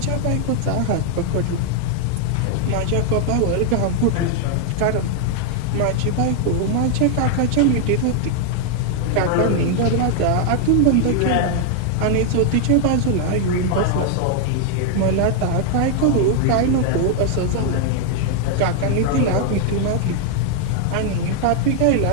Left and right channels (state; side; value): different; both; correlation 0.00